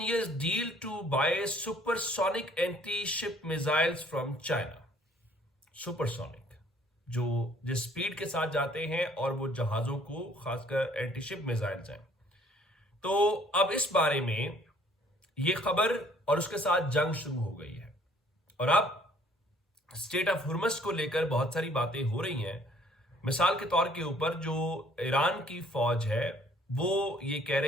deal to buy supersonic anti ship missiles from China. Supersonic, जो जिस स्पीड के साथ जाते हैं और वो जहाजों को खासकर एंटी शिप मिसाइल्स हैं। तो अब इस बारे में ये खबर और उसके साथ जंग शुरू हो गई है, और अब स्टेट ऑफ हुर्मस को लेकर बहुत सारी बातें हो रही हैं। मिसाल के तौर के ऊपर जो ईरान की फौज है वो ये कह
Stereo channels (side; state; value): both; normal; correlation 0.59